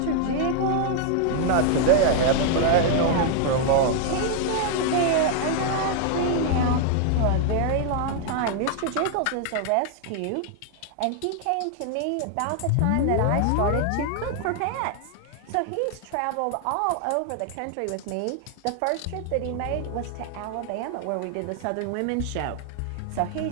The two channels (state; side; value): different; both; correlation 0.00